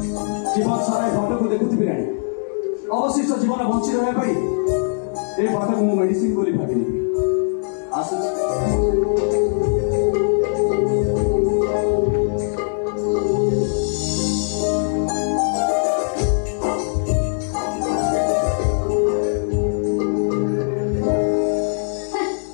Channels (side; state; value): right; silent; digital silence